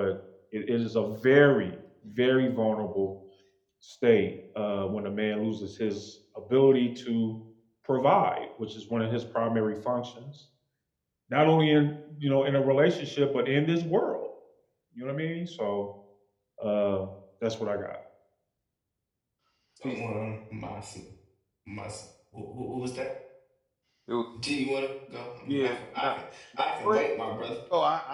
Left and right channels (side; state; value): both; identical; correlation 1.00